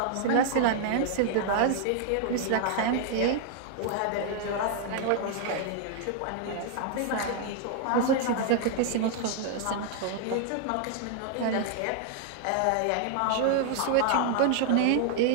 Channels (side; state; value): both; different; correlation 0.00